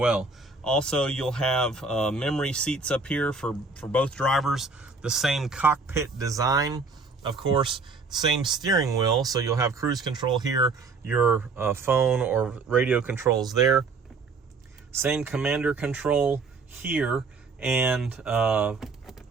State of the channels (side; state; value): left; quieter; 4.2 dB